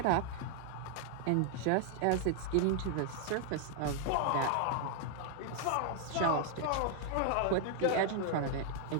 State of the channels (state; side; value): different; both; correlation 0.00